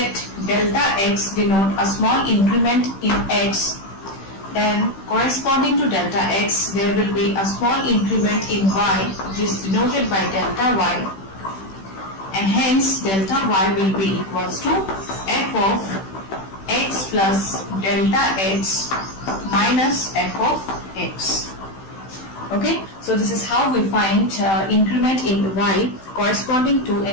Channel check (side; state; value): right; late; 16 ms